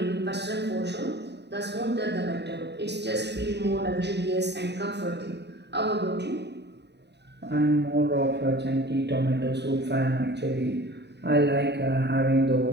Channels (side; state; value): left; late; 0.50 ms